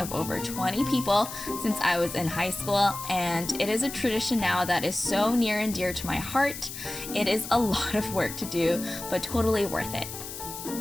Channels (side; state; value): left; noise; hiss, 9 dB below the sound